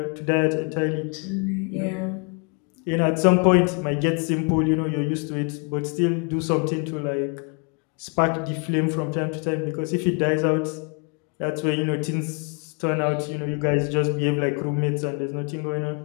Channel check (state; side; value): quieter; right; 36.5 dB